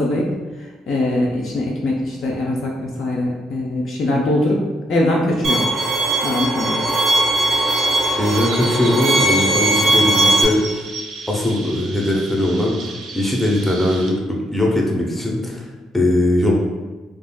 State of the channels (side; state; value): both; normal; correlation 0.77